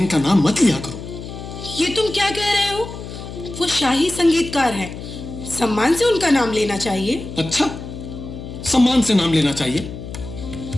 का नाम मत लिया करो। ये तुम क्या कह रहे हो? वो शाही संगीतकार हैं, सम्मान से उनका नाम लेना चाहिए। अच्छा, सम्मान से नाम लेना चाहिए?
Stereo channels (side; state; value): left; noise; hum, 10 dB below the sound